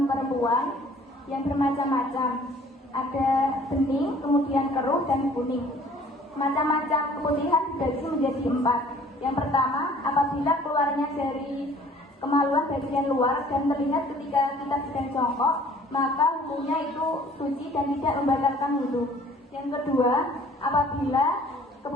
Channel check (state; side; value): normal; both; correlation 0.54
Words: perempuan yang bermacam-macam. Ada bening, kemudian keruh, dan kuning. Macam-macam keputihan dibagi menjadi 4. Yang pertama, apabila keluarnya dari kemaluan bagian luar dan terlihat ketika kita sedang jongkok, maka hukumnya itu suci dan tidak membatalkan wudu. Yang kedua, apabila